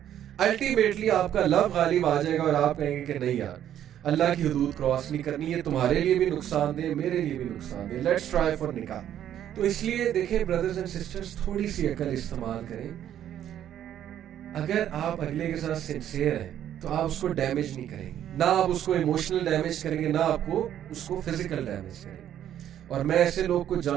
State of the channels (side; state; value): left; quieter; 10.8 dB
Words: الٹیمیٹلی آپ کا لو غالب آ جائے گا اور آپ کہیں گے کہ نہیں یار, اللہ کی حدود کراس نہیں کرنی ہے, تمہارے لیے بھی نقصان دہ, میرے لیے بھی نقصان دہ, لیٹس ٹرائی فار نکاح. تو اس لیے دیکھیں برادرز اینڈ سسٹرز, تھوڑی سی عقل استعمال کریں. اگر آپ اگلے کے ساتھ سنسیئر ہیں تو آپ اس کو ڈیمیج نہیں کریں گے, نہ آپ اس کو ایموشنل ڈیمیج کریں گے, نہ آپ کو اس کو فزیکل ڈیمیج کریں گے. اور میں ایسے لوگ کو